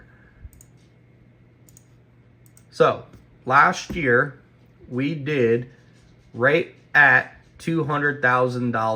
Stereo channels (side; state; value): both; identical; correlation 1.00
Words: So last year we did right at